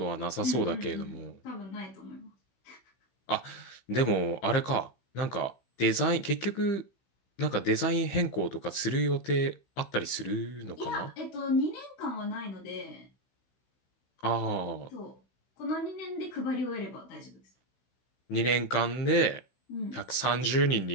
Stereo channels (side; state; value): right; late; 16 ms